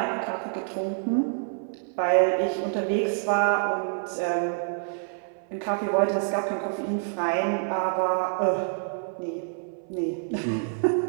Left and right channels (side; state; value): left; silent; 60 dB below the other